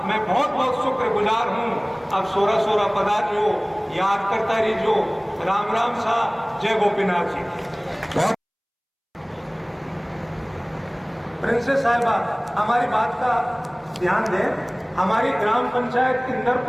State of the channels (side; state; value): both; identical; correlation 1.00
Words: मैं बहुत बहुत शुक्रगुजार हूँ। अब 16 पधारियो, याद करता रहियो। राम राम सा, जय गोपीनाथ जी। प्रिंसेस साहिबा, हमारी बात का ध्यान दें। हमारी ग्राम पंचायत